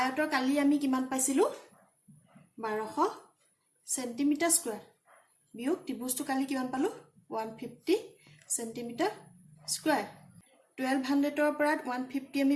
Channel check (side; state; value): both; identical; correlation 1.00